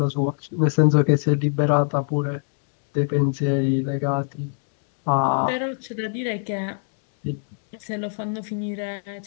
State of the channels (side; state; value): right; silent; digital silence